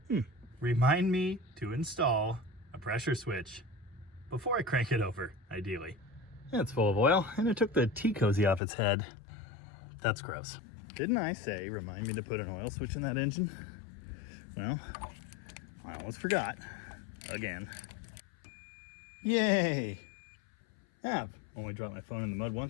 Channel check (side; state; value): right; drops out; at 8.6 s